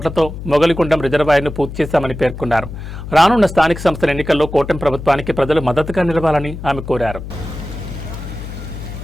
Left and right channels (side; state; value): left; noise; hum, 10 dB below the sound